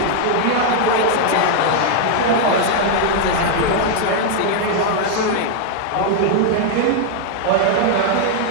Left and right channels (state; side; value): different; both; correlation 0.00